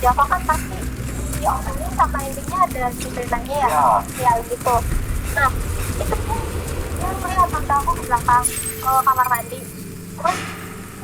kan pasti di opening sama endingnya ada ceritanya ya gitu. Nah itu pun dia melihat tante aku ke belakang kamar mandi, terus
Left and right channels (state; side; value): identical; both; correlation 1.00